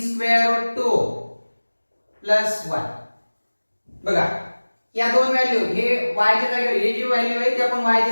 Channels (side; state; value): both; inverted; correlation -1.00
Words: root 2 plus 1. बघा या दोन value, हे y च्या जागेवर ही जी व्हॅल्यू आहे ती आपण y